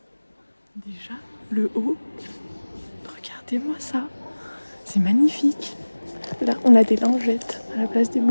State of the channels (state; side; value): inverted; both; correlation -1.00